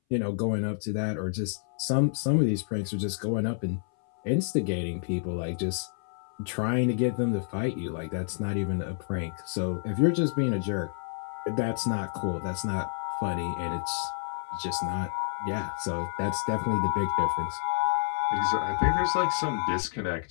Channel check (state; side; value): silent; right; 59 dB below the other